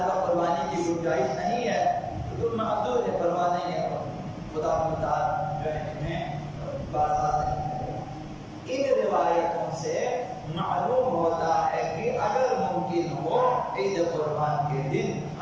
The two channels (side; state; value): both; identical; correlation 1.00